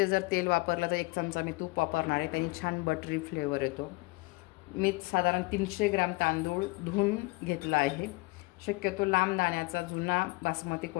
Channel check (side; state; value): right; quieter; 24.8 dB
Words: जर तेल वापरलं तर 1 चमचा मी तूप वापरणार आहे, त्याने छान बटरी फ्लेवर येतो। मी साधारण 300 ग्रॅम तांदूळ धुवून घेतला आहे। शक्यतो लांब दाण्याचा जुना बासमती